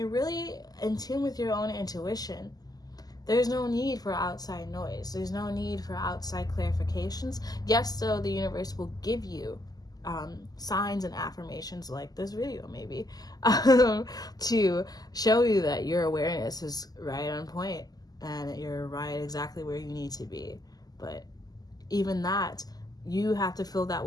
really in tune with your own intuition, there's no need for outside noise. There's no need for outside clarifications. Yes, though, the universe will give you signs and affirmations like this video, maybe, to show you that your awareness is right on point and you're right exactly where you need to be. But even that, you have to feel that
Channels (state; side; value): late; right; 0.18 ms